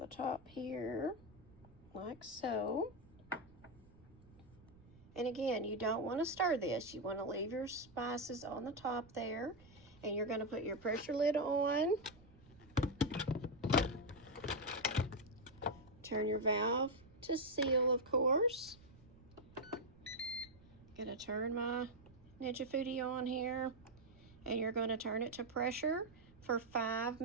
top here, like so. And again, you don't want to stir this. You want to leave your spices on the top there. And you're going to put your pressure lid on. Turn your valve to seal, of course. Going to turn my Ninja Foodie on here. And you're going to turn it to pressure for 5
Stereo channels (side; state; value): right; noise; rumble, 24 dB below the sound